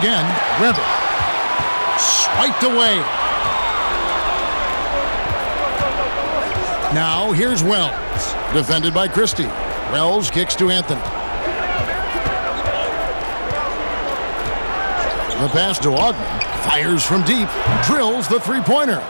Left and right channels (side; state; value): both; inverted; correlation -1.00